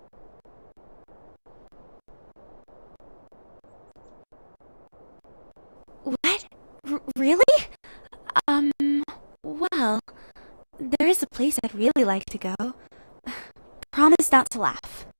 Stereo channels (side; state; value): both; inverted; correlation -1.00